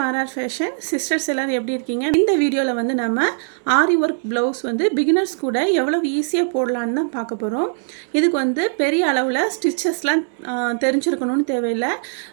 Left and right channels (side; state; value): left; silent; digital silence